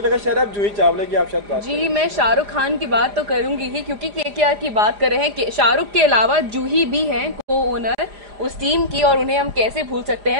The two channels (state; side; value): late; left; 4.9 ms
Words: लगा शायद आप जूही चावला की आप शायद बात जी, मैं शाहरुख खान की बात तो करूंगी ही क्योंकि केकेआर की बात कर रहे हैं। शाहरुख के अलावा जूही भी हैं को ओनर उस टीम की, और उन्हें हम कैसे भूल सकते